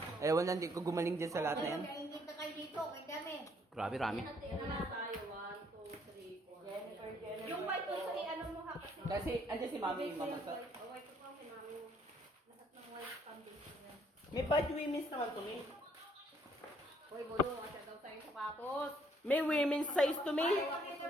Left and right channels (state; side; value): normal; both; correlation 0.66